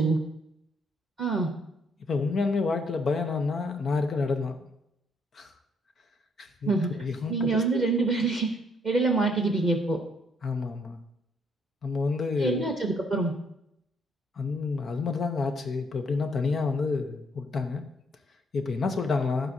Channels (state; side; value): normal; both; correlation 0.69